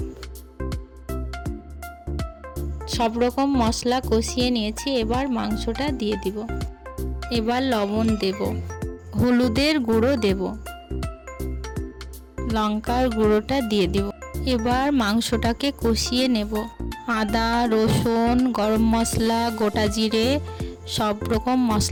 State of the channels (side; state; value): both; identical; correlation 1.00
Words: সব রকম মশলা কষিয়ে নিয়েছি, এবার মাংসটা দিয়ে দিব। এবার লবণ দেব, হলুদের গুঁড়ো দেব, লঙ্কার গুঁড়োটা দিয়ে দিব। এবার মাংসটাকে কষিয়ে নেব। আদা, রসুন, গরম মশলা, গোটা জিরে সব রকম